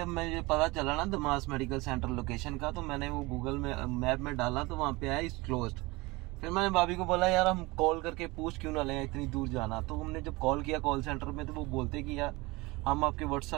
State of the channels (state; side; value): quieter; left; 23.2 dB